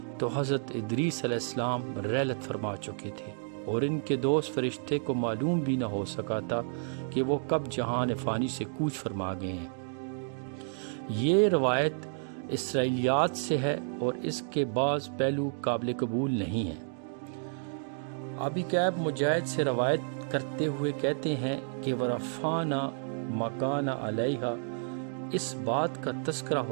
تو حضرت ادریس علیہ السلام رحلت فرما چکے تھے اور ان کے دوست فرشتے کو معلوم بھی نہ ہو سکا تھا کہ وہ کب جہان فانی سے کوچ فرما گئے ہیں۔ یہ روایت اسرائیلیات سے ہے اور اس کے بعض پہلو قابل قبول نہیں ہیں۔ ابی کعب مجاہد سے روایت کرتے ہوئے کہتے ہیں کہ ورفعنا مکان علیہا اس بات کا تذکرہ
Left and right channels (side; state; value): left; silent; digital silence